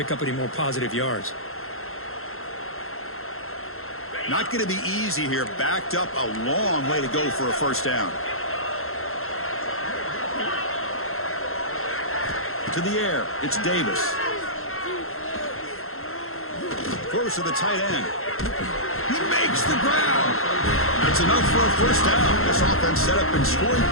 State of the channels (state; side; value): late; right; 0.62 ms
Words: up any more positive yards. Not going to be easy here. Backed up a long way to go for a first down. To the air, it's Davis. Throws to the tight end. He makes the ground. That's enough for a first down. This offense set up in scoring